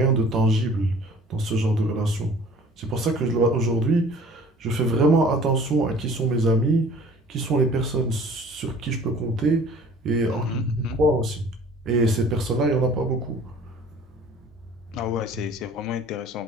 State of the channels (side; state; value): both; normal; correlation 0.49